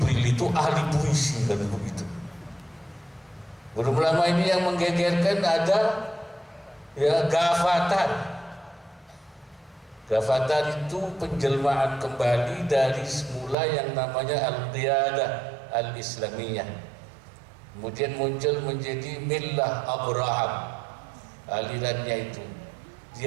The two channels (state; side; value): drops out; left; at 13.6 s